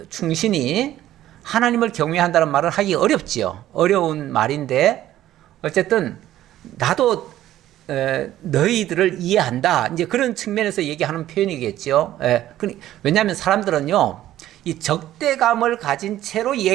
충신이 하나님을 경외한다는 말을 하기 어렵지요. 어려운 말인데 어쨌든 나도 너희들을 이해한다. 이제 그런 측면에서 얘기하는 표현이겠죠. 왜냐하면 사람들은요, 이 적대감을 가진 채로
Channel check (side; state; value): left; quieter; 13.4 dB